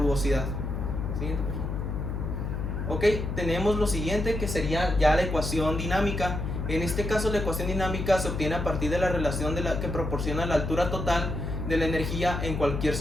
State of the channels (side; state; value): left; noise; hum, 3 dB below the sound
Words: Siguiente, por favor. Ok, tenemos lo siguiente, que sería ya la ecuación dinámica. En este caso la ecuación dinámica se obtiene a partir de la relación que proporciona la altura total de la energía en cualquier